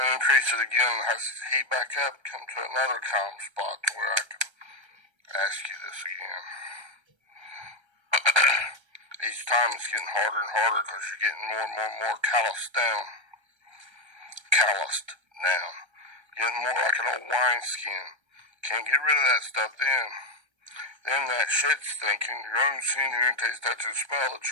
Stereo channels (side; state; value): left; late; 1.3 ms